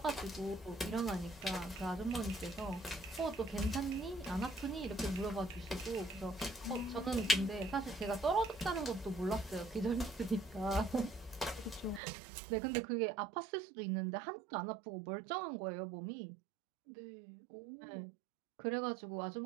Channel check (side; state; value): left; drops out; at 12.0 s